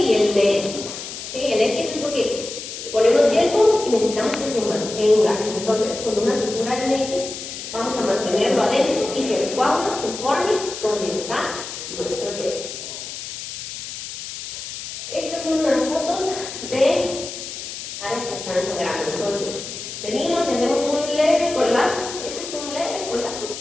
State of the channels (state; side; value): noise; left; hiss, 9 dB below the sound